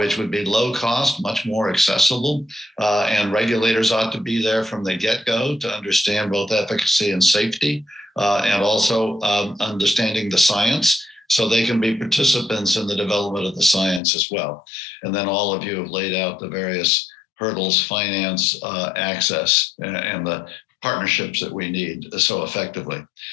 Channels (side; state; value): right; drops out; at 14.0 s